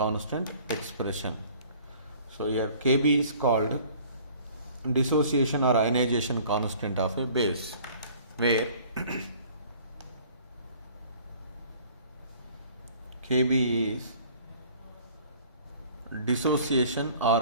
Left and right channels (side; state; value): both; inverted; correlation -0.51